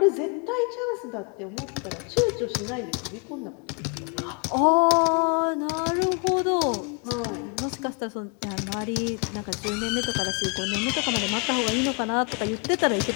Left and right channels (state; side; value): quieter; right; 35.2 dB